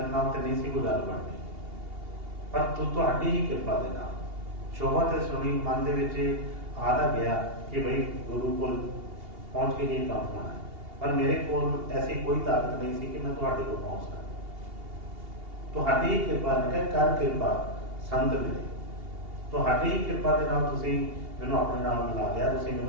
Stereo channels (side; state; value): left; late; 2.8 ms